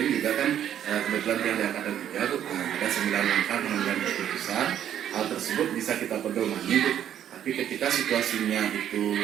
juga kan kebetulan yang di angkatan 3 ada 9 langkah pengambilan keputusan. Hal tersebut bisa kita pedomani, tapi ketika situasinya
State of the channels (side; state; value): left; quieter; 10.3 dB